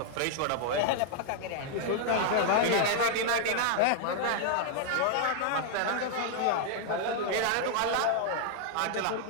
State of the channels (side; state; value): both; different; correlation 0.00